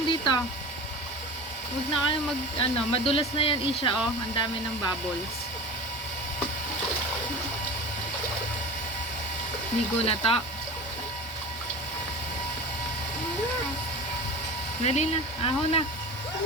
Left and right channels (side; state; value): both; normal; correlation 0.33